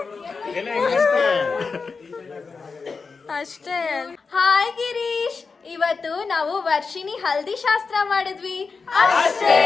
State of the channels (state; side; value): quieter; right; 4.7 dB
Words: ಅಷ್ಟೇ. ಹಾಯ್ ಗಿರೀಶ್, ಇವತ್ತು ನಾವು ವರ್ಷಿಣಿ ಹಲ್ದಿ ಶಾಸ್ತ್ರ ಮಾಡಿದ್ವಿ ಅಷ್ಟೇ.